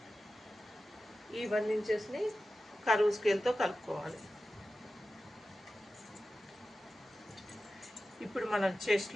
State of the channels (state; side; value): normal; both; correlation 0.94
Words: ఈ 1 ఇంచెస్ని కర్వ్ స్కేల్తో కలుపుకోవాలి. ఇప్పుడు మనం